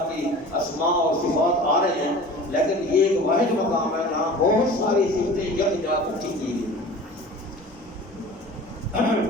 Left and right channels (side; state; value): both; normal; correlation 0.40